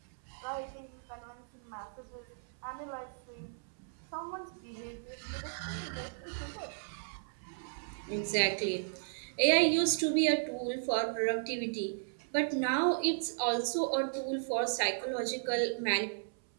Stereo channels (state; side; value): silent; left; 54 dB below the other